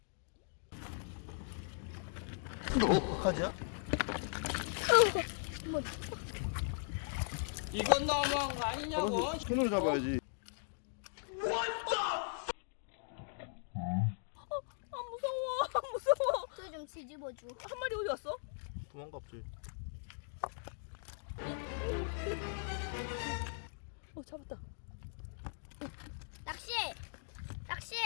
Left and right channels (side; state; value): right; silent; digital silence